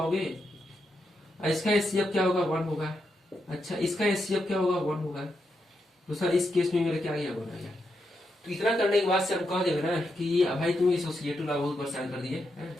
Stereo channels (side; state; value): both; normal; correlation 0.84